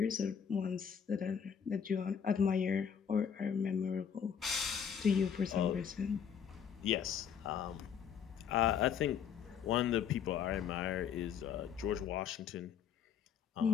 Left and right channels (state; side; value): quieter; right; 7.7 dB